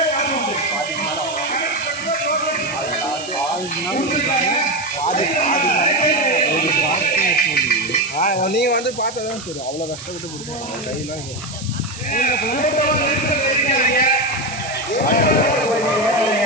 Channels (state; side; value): noise; right; hiss, 13 dB below the sound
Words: நீங்கள் வந்து பார்த்தா தான் தெரியும். அவ்வளோ கஷ்டப்பட்டு பிடிக்கும் கையெல்லாம்